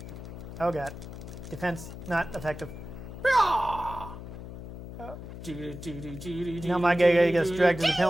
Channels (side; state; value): left; noise; hum, 11 dB below the sound